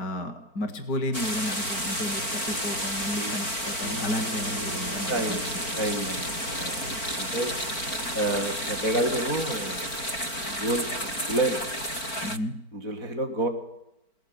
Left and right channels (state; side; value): late; right; 4.4 ms